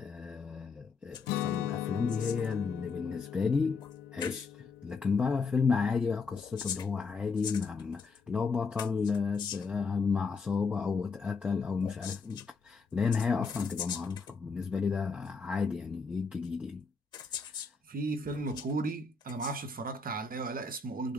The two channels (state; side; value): quieter; right; 4.5 dB